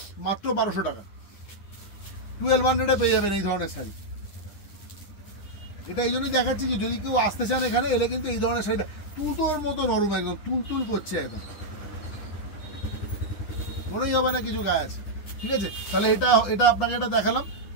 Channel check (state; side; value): late; right; 9.9 ms